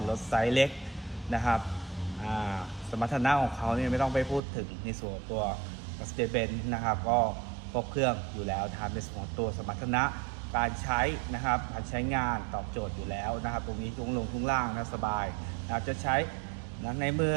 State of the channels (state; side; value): drops out; left; at 4.4 s